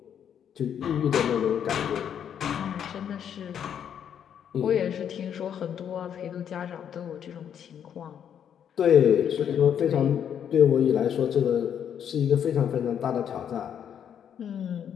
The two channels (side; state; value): right; quieter; 8.8 dB